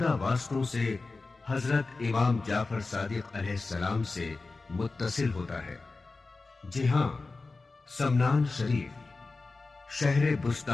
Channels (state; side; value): quieter; right; 3.7 dB